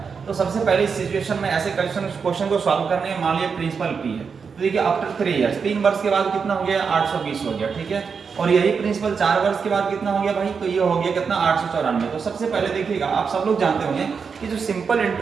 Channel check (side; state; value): left; quieter; 5.8 dB